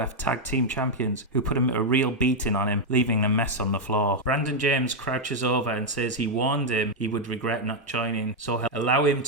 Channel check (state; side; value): normal; both; correlation 0.00